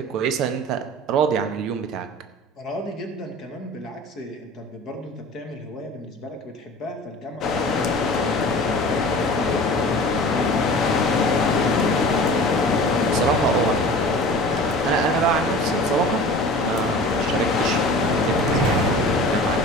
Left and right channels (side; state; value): both; normal; correlation 0.40